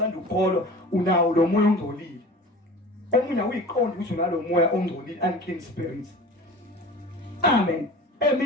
ukholwa unawo lo moya ongcolile. Omunye uyiqonda ukuthi unalo moya ongcolile unclean spirit. Amen.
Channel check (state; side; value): normal; both; correlation 0.38